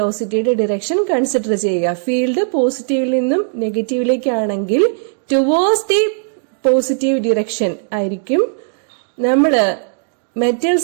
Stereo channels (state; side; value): silent; left; digital silence